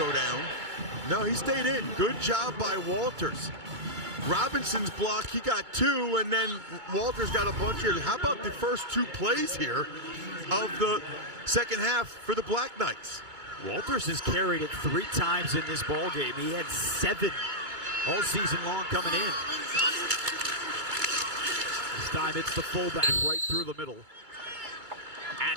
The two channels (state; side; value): late; left; 2.2 ms